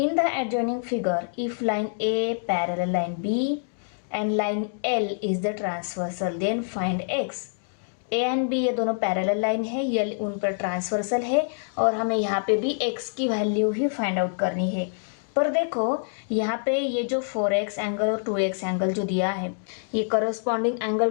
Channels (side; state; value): right; silent; digital silence